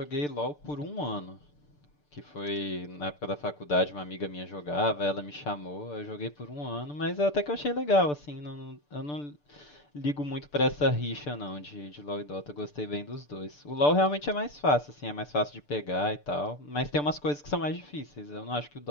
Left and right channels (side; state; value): right; late; 6.8 ms